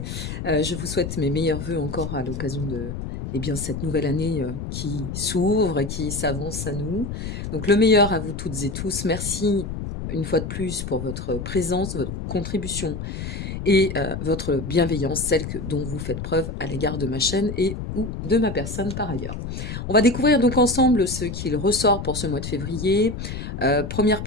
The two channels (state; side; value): noise; left; rumble, 6 dB below the sound